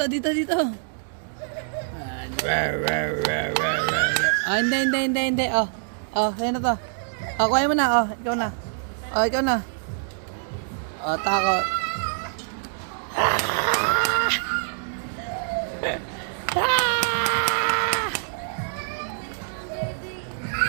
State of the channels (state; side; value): silent; left; digital silence